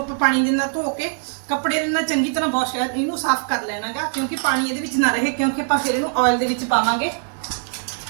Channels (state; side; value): silent; left; digital silence